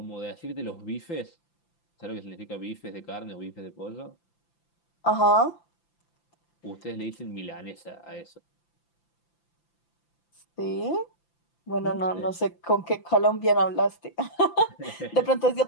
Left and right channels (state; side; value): late; right; 5.9 ms